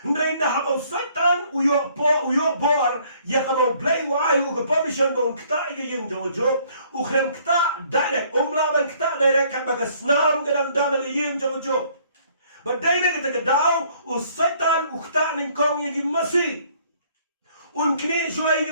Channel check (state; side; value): inverted; both; correlation -0.61